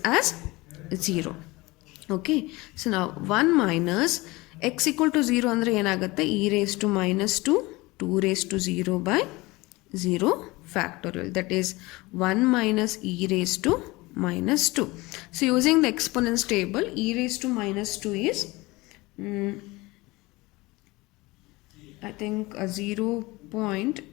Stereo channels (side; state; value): right; quieter; 22.0 dB